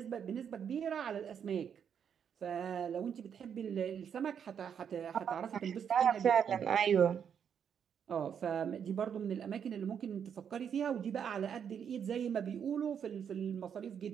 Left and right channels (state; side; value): quieter; left; 7.9 dB